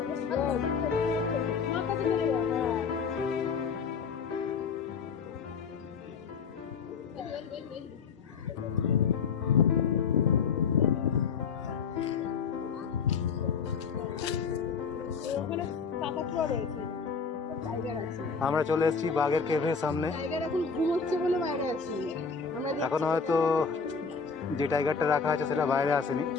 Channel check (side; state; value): right; quieter; 5.6 dB